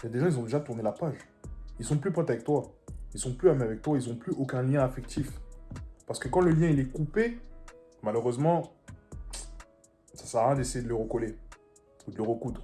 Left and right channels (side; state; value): both; identical; correlation 1.00